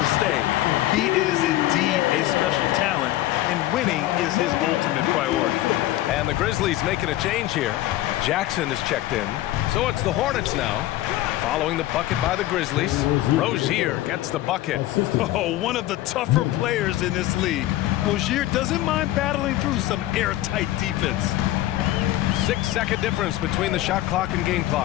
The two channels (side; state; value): right; quieter; 15.4 dB